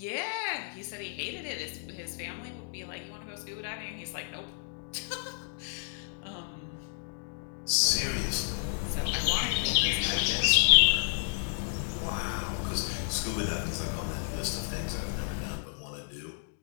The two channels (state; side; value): silent; right; digital silence